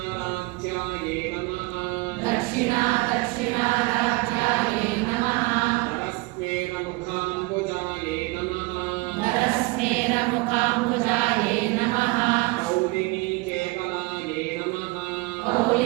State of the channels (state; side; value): quieter; left; 24.0 dB